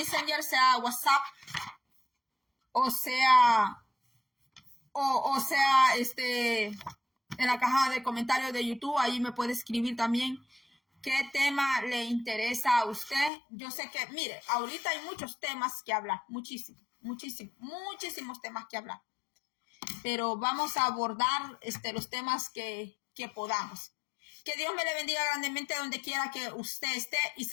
sea WhatsApp, o sea en la caja de comentarios de YouTube. Ahí me puede escribir también qué tema le interesa a usted. Yo sé que, mire, ahorita hay muchos temas que hablar, muchísimos temas que hablar. Pero vamos a abordar los temas que podamos. Que Dios me le bendiga grandemente donde quiera que usted esté y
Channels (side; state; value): right; drops out; at 13.3 s